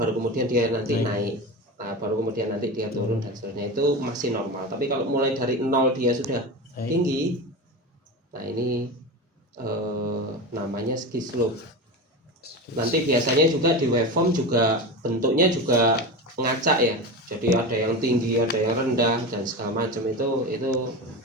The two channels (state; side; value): normal; both; correlation 0.25